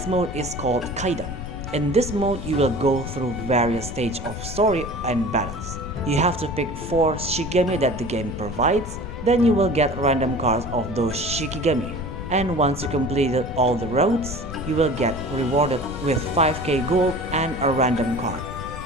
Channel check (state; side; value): noise; left; rumble, 9 dB below the sound